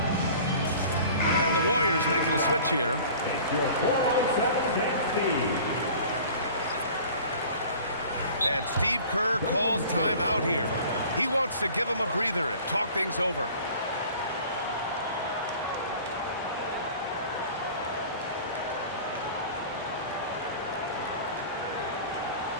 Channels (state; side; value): inverted; both; correlation -0.44